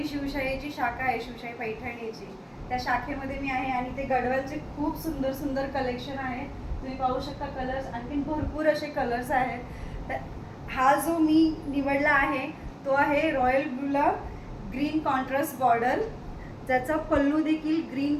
शिवशाहीची शाखा आहे, शिवशाही पैठणीची, त्या शाखेमध्ये मी आहे. आणि ते गडवालचे खूप सुंदर सुंदर कलेक्शन आहे. तुम्ही पाहू शकता कलर्स, आणखीन भरपूर असे कलर्स आहेत. तर हा जो मी निवडला आहे तो आहे रॉयल ब्लूला ग्रीन कॉन्ट्रास्ट बॉर्डर, ज्याचा पल्लू देखील ग्रीन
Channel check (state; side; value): identical; both; correlation 1.00